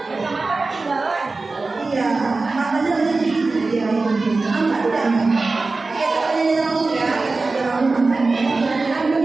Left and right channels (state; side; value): quieter; left; 3.6 dB